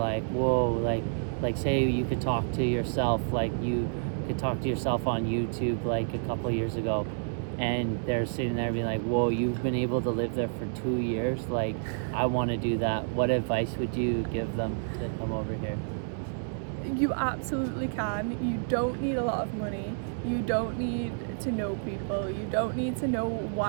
whoa, like say you could talk to yourself, like you could talk to yourself on YouTube like a couple years ago, and they're sitting there being like, whoa, you've been able to live there for 2 years, like I want to do that. What advice would you give them to come over here? You absolutely can. You don't need a lot of money. You don't need to know people. You don't need to know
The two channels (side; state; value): left; silent; 58 dB below the other